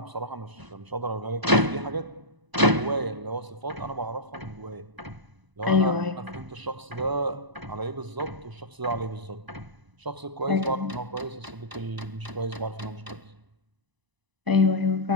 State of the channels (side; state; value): left; late; 1.0 ms